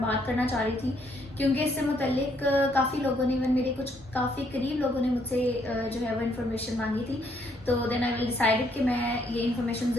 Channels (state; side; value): normal; both; correlation 0.70